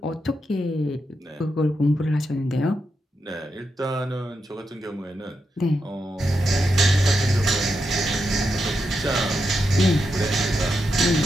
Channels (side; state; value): both; normal; correlation 0.85